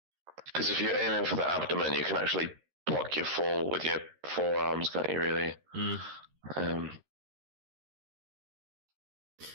Because if you're aiming for the abdomen, you can actually block your fall with your forearms, can't you, really?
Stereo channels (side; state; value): left; late; 13 ms